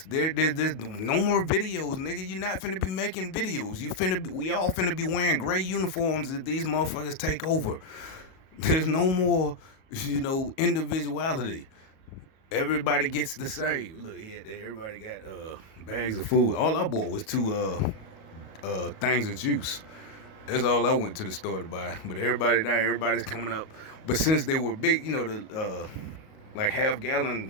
There's no more videos, nigga. You're not finna be making videos. We all finna be wearing gray uniforms if these motherfuckers take over. There's no more, individuality. Everybody gets the same. Look here, everybody got bags of food. All I bought was 2 things of juice. That's all I went to the store to buy. But everybody's coming up. But since they were big, the like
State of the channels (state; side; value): late; right; 38 ms